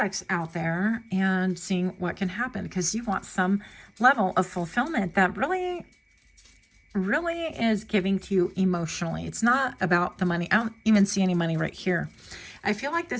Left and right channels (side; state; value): both; identical; correlation 1.00